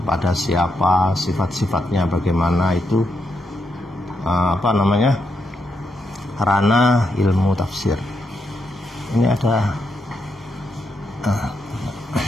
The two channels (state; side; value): normal; both; correlation 0.81